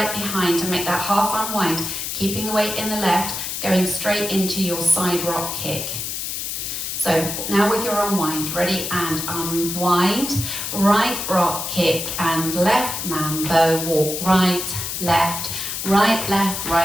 behind to make that half unwind, keeping the weight in the left, going straight into your side rock kick. So now with your unwind, ready and unwind, right rock kick and left man bow, walk right, left,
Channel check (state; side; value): noise; left; hiss, 4 dB below the sound